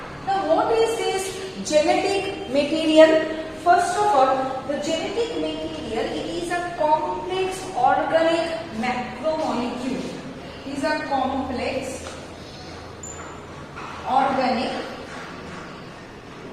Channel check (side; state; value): both; identical; correlation 1.00